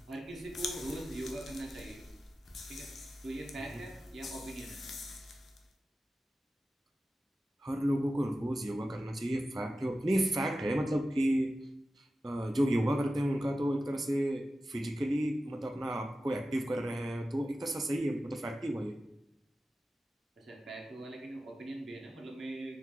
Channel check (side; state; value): both; normal; correlation 0.94